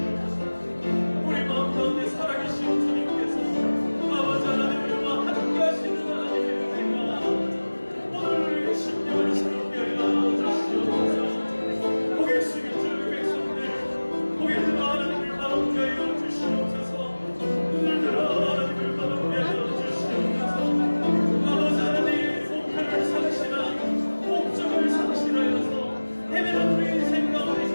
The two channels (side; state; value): both; inverted; correlation -1.00